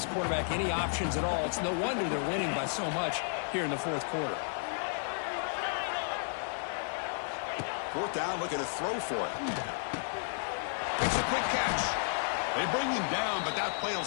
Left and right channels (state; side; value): silent; right; 56 dB below the other